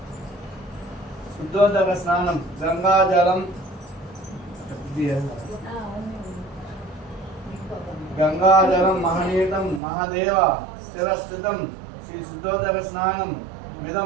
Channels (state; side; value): drops out; left; at 9.8 s